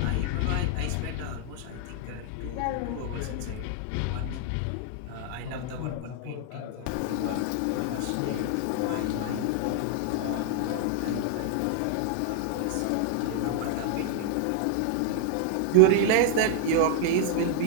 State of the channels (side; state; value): both; different; correlation 0.00